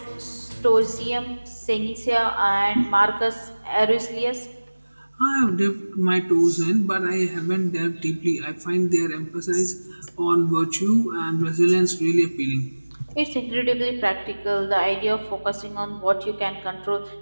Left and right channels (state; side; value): inverted; both; correlation -1.00